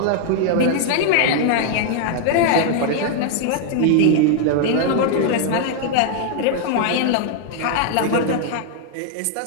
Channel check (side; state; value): both; different; correlation 0.00